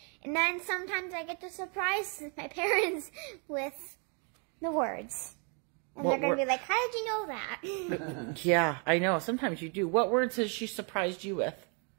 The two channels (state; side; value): quieter; left; 37.7 dB